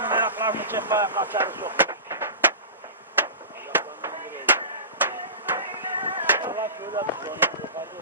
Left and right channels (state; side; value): inverted; both; correlation -0.31